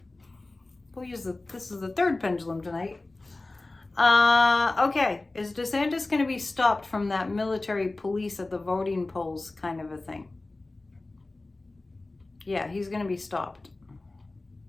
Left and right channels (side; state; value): right; quieter; 3.1 dB